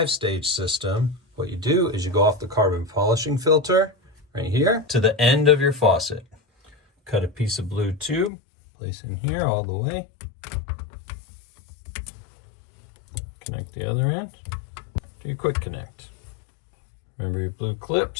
system. What you do is you go off the carbon polishing filter right here to the end of your faucet. Cut a piece of blue tube, place in here all the way. Connect the other end. Do a quick connect. Remember your blue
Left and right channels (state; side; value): drops out; right; at 8.3 s